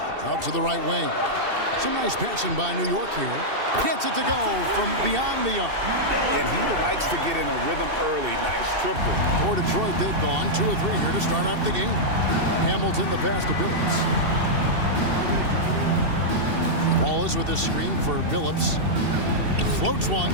Out to the right wing. Some nice passing by New York here. Gets it to go from beyond the arc. And he likes to get in a rhythm early. Nice triple. For Detroit, they've gone 2 of 3 here to start off the game. Hamilton, the pass to Billups. Wallace with the screen for Billups. Floats one.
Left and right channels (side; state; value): left; late; 2.7 ms